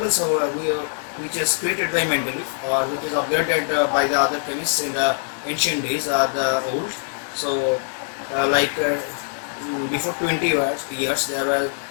which is created by Mendeleev or which is upgraded by the other chemists in the ancient days are the old. So before 20 years there were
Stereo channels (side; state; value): right; silent; 64 dB below the other